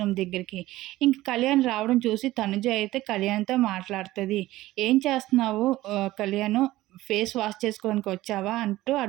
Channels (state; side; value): quieter; left; 16.7 dB